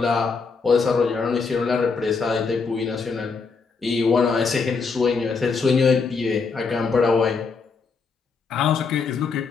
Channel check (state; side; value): quieter; right; 4.9 dB